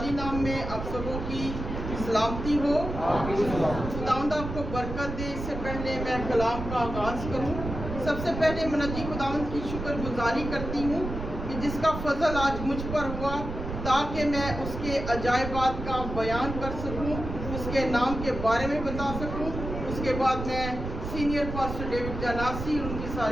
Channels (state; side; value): noise; right; rumble, 6 dB below the sound